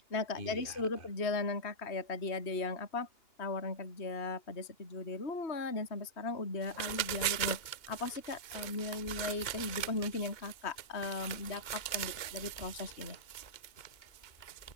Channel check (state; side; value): late; right; 2.8 ms